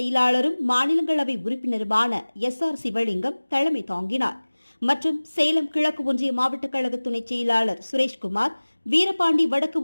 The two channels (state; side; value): inverted; both; correlation -1.00